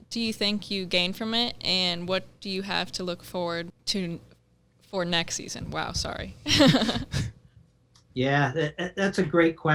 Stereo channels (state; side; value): identical; both; correlation 1.00